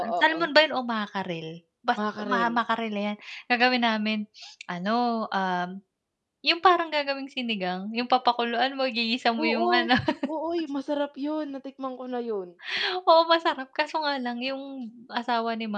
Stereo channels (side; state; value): both; identical; correlation 1.00